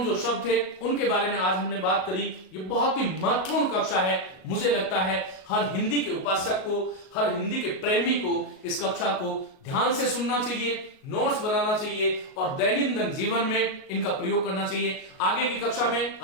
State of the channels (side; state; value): right; late; 38 ms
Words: जो शब्द थे उनके बारे में आज हमने बात करी। ये बहुत ही महत्वपूर्ण कक्षा है, मुझे लगता है हर हिंदी के उपासक को, हर हिंदी के प्रेमी को इस कक्षा को ध्यान से सुनना चाहिए, नोट्स बनाना चाहिए और दैनंदिन जीवन में इनका प्रयोग करना चाहिए। आगे की कक्षा में,